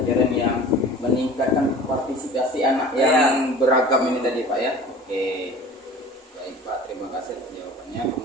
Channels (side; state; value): both; normal; correlation 0.42